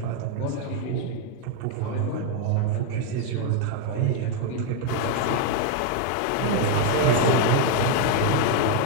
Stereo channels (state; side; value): different; both; correlation 0.00